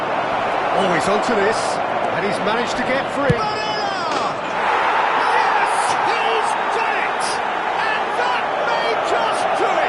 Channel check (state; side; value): identical; both; correlation 1.00